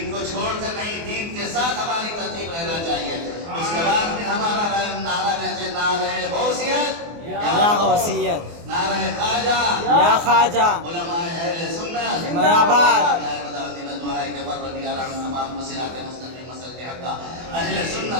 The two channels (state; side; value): late; left; 24 ms